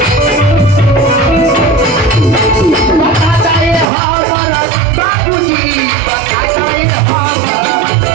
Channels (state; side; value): drops out; left; at 3.9 s